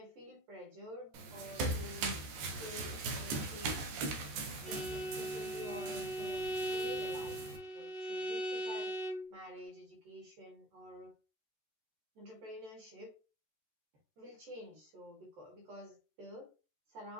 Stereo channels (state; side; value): late; left; 14 ms